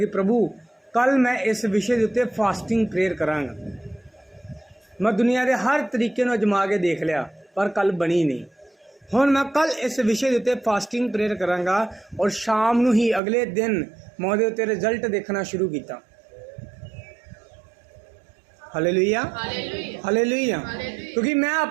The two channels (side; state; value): left; drops out; at 13.2 s